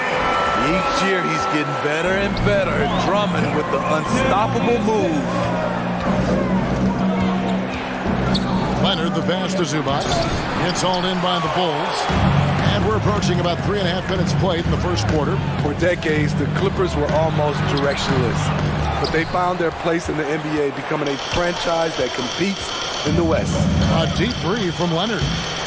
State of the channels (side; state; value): both; identical; correlation 1.00